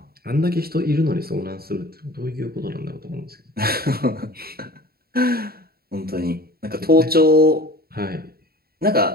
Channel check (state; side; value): late; left; 0.45 ms